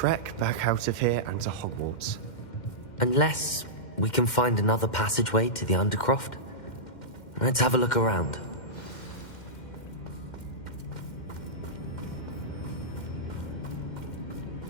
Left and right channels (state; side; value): late; right; 2.1 ms